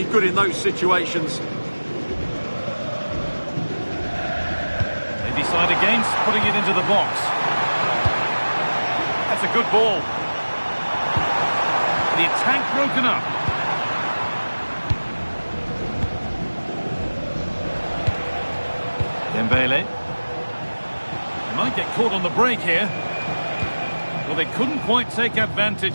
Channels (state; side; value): inverted; both; correlation -1.00